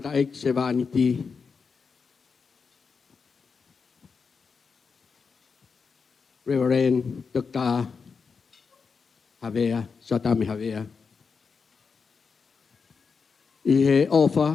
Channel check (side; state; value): right; quieter; 5.3 dB